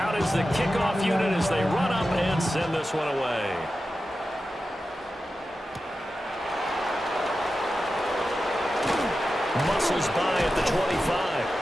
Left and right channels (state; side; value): normal; both; correlation 0.92